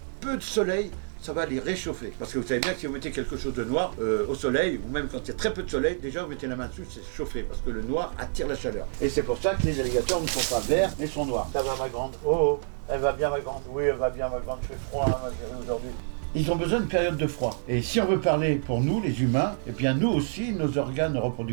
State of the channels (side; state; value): left; silent; digital silence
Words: peu de soleil, ça va les réchauffer. Parce que vous savez bien que si vous mettez quelque chose de noir au soleil, ou même quand il y a très peu de soleil, déjà vous mettez la main dessus, c'est chauffé, parce que le noir attire la chaleur. Et c'est pour ça que les alligators ne sont pas verts, mais sont noirs. Ça va, ma grande? Oh, elle va bien, ma grande? Oui, elle va bien, ma grande. Il fait froid, hein, ma chérie, aujourd'hui. Ils ont besoin d'une période de froid. Et si on veut parler pour nous, les humains, eh bien nous aussi, nos organes